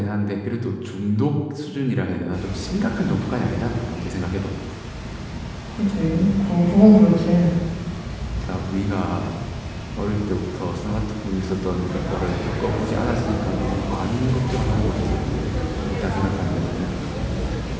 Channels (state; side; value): identical; both; correlation 1.00